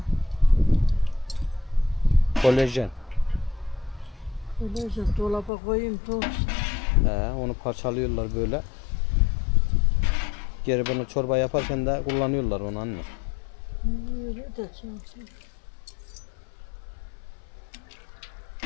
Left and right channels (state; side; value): drops out; right; at 5.5 s